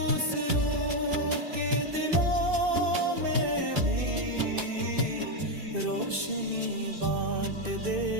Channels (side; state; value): left; late; 2.5 ms